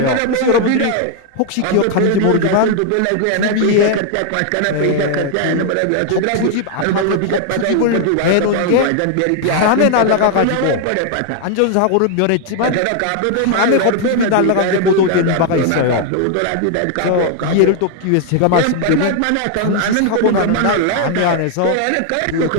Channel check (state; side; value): different; both; correlation 0.00